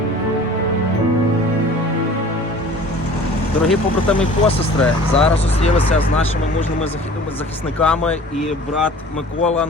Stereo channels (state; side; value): normal; both; correlation 0.45